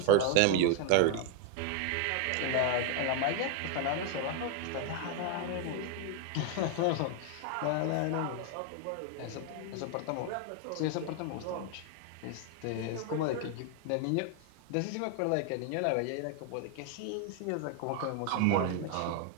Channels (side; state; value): both; different; correlation 0.01